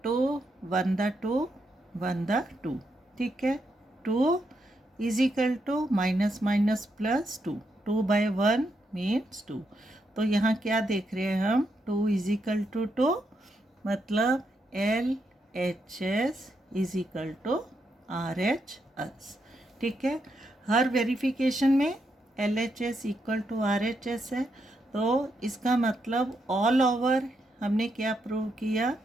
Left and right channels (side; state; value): both; normal; correlation 0.81